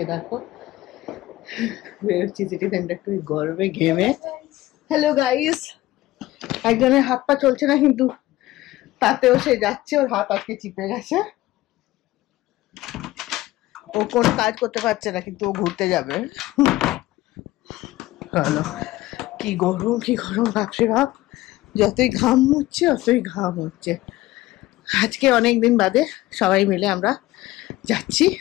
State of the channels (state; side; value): quieter; right; 17.1 dB